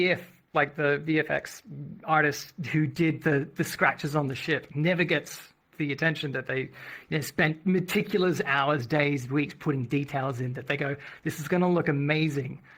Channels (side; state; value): both; identical; correlation 1.00